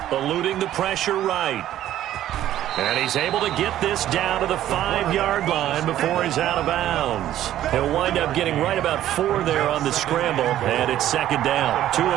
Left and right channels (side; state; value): left; quieter; 12.5 dB